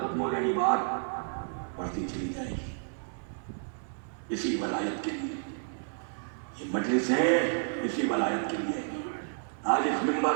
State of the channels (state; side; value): silent; left; digital silence